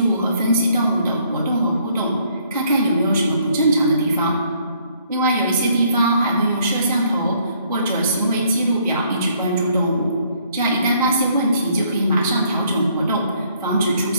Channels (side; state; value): both; inverted; correlation -0.65